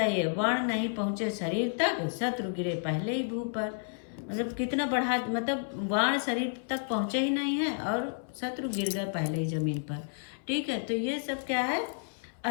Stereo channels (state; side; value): silent; right; 57 dB below the other